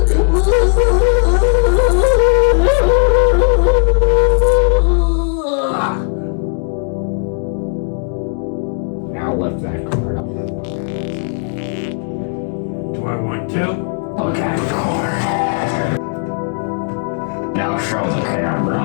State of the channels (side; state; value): right; silent; 60 dB below the other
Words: Now lift that card up. Do I want to? Look at the card. Now show the camera